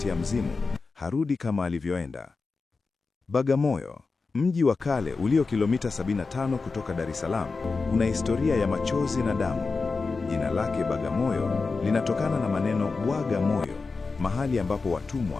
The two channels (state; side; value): quieter; right; 4.2 dB